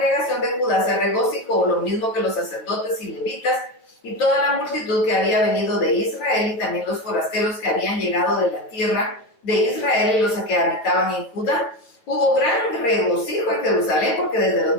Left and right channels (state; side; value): late; right; 8.9 ms